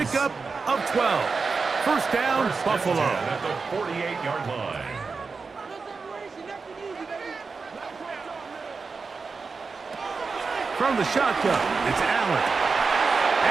of 12. First down, Buffalo. At the 48-yard line. From the shotgun, it's Allen.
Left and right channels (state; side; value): quieter; left; 4.6 dB